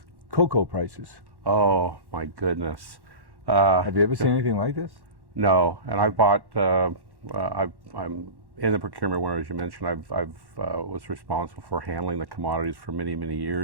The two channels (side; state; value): left; late; 1.1 ms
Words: cocoa prices? Oh my goodness. Have you ever seen anything like this? No, and I bought. I'm in the procurement world, as you mentioned. I've was responsible for handling the commodities for many